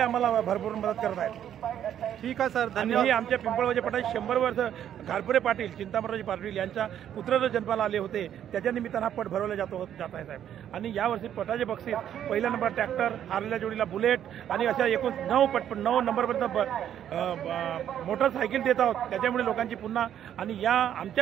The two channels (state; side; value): quieter; left; 10.2 dB